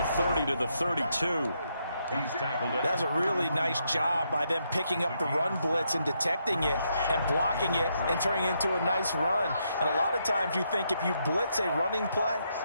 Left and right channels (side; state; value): both; inverted; correlation -0.78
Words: 30 to the 32. That's a really nice job by them picking up the run blitz and detecting it and blocking it and turning it into a nice run. And a lot of times you think if you blitz a running play,